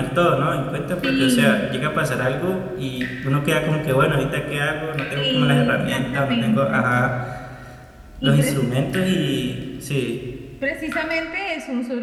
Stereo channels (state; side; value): identical; both; correlation 1.00